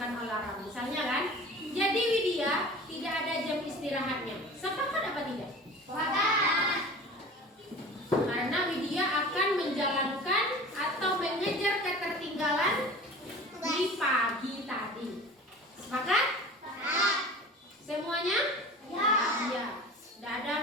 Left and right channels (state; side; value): normal; both; correlation 0.39